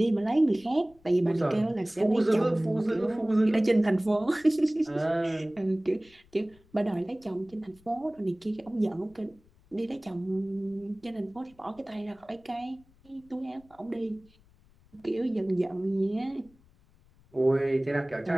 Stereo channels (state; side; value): noise; left; rumble, 30 dB below the sound